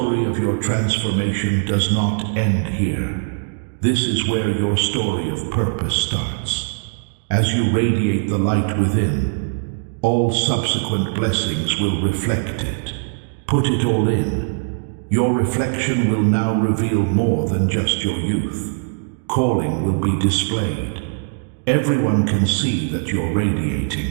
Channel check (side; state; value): left; silent; 65 dB below the other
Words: of your transformation does not end here. This is where your story of purpose starts. As you radiate the light within, all subsequent blessings will reflect it. Put it all in. Your reflection will now reveal more than just your youth. Calling will be displayed. Everyone can see that you're radiating.